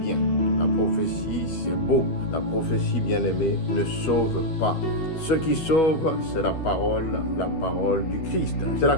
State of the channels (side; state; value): right; late; 12 ms